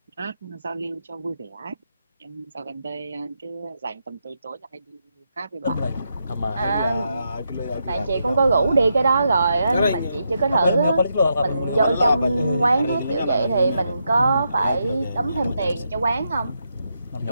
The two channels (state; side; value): inverted; both; correlation -0.83